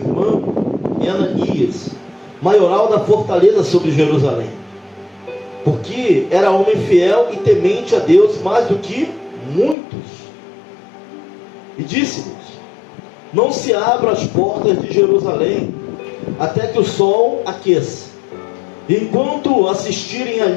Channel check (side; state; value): right; drops out; at 9.8 s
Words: e Ananias, maioral da fortaleza sobre Jerusalém, porque era homem fiel e temente a Deus mais do que muitos. E disse-lhes: não se abram as portas de Jerusalém até que o sol aqueça. E enquanto assistirem